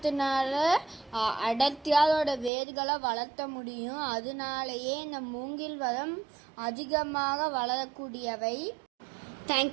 அடர்த்தியாக அதோட வேர்களை வளர்த்த முடியும். அதனாலேயே இந்த மூங்கில் மரம் அதிகமாக வளரக்கூடியவை.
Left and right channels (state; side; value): drops out; left; at 2.5 s